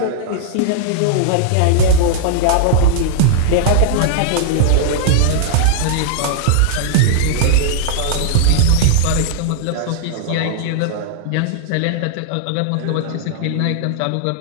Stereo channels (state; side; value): different; both; correlation -0.01